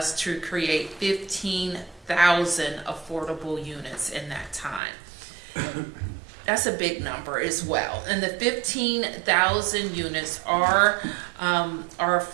to create 15,000 affordable units in that time. That's a big number as well, and the 15,000 units are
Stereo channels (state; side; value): drops out; left; at 4.8 s